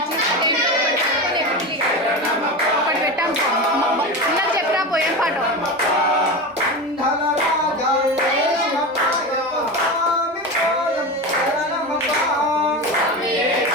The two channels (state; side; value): normal; both; correlation 0.23